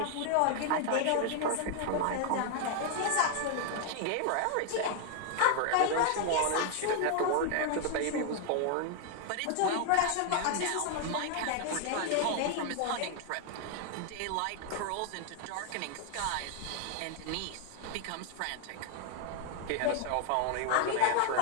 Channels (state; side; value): different; both; correlation 0.00